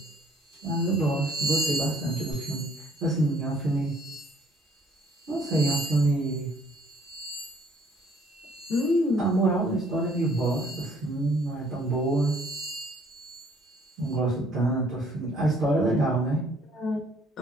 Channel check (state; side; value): normal; both; correlation 0.61